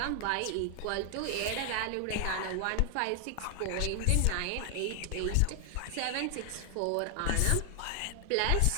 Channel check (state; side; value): different; both; correlation 0.00